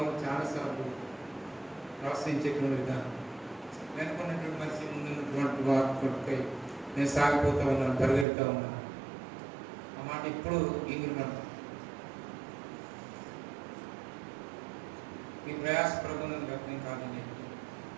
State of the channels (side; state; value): left; drops out; at 8.2 s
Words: చాలాసార్లు ప్రోత్సహించేటువంటి విధానం, వెనుకున్నటువంటి మనిషి ముందున్నటువంటి వారి కొడుకై నేను సాగిపోతా ఉన్నాను, పరిగెడుతూ ఉన్నాను. ఆ మాట ఇప్పుడు ఇంగిరిమంట. ఈ ప్రయాస ప్రభుత్వం వ్యక్తం కాదని